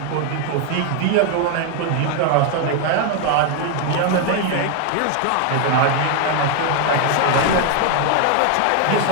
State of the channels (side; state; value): both; different; correlation 0.00